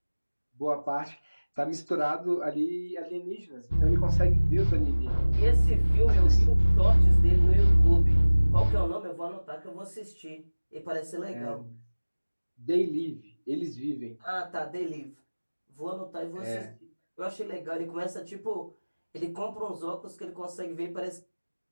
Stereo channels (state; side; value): inverted; both; correlation -1.00